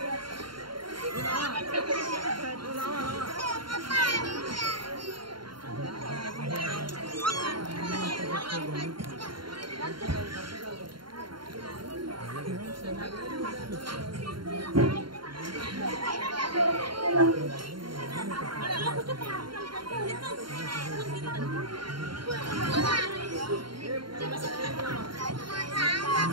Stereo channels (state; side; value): late; left; 0.72 ms